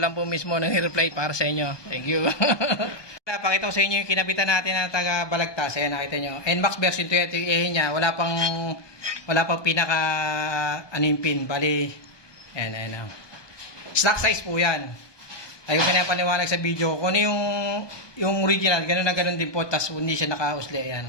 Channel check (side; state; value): right; late; 1.2 ms